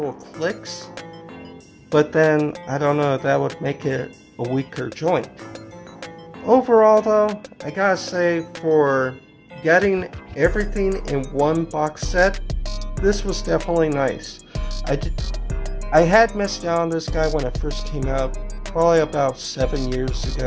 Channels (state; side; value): identical; both; correlation 1.00